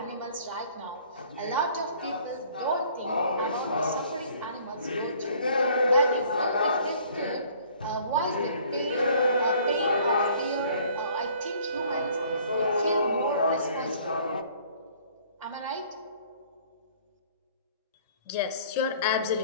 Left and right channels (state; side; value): inverted; both; correlation -0.55